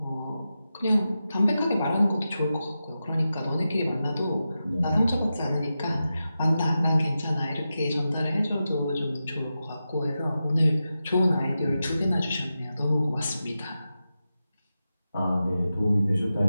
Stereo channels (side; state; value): both; inverted; correlation -0.91